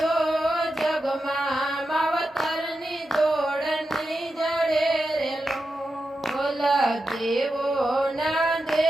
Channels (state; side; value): normal; both; correlation 0.89